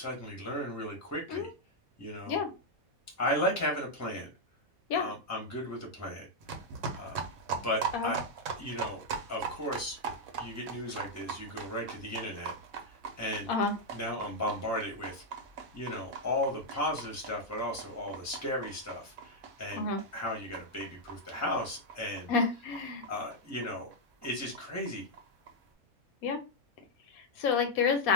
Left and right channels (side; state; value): both; normal; correlation -0.01